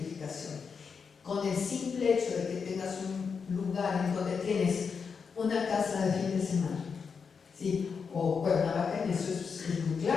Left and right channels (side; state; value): right; quieter; 5.8 dB